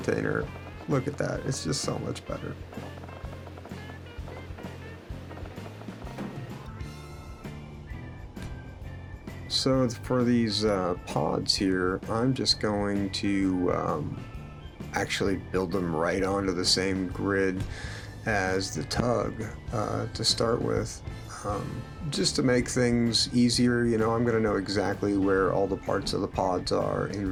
Look at that, it's just so much better. So for these pods here, I'm just going to actually build them right onto the same grid as the tug to start with, just to make things easier. You know, I'm going to know exactly where all the parts of the pods are in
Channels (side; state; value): both; identical; correlation 1.00